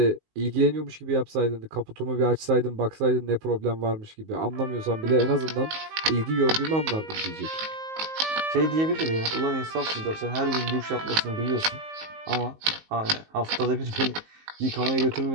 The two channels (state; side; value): late; left; 19 ms